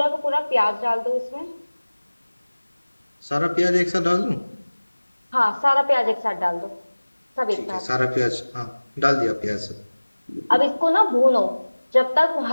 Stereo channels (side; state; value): both; inverted; correlation -1.00